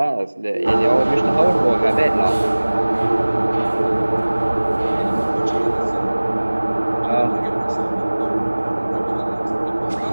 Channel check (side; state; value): both; inverted; correlation -1.00